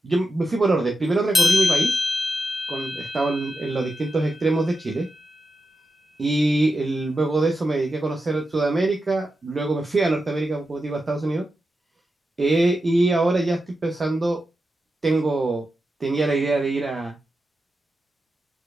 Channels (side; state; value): both; normal; correlation 0.89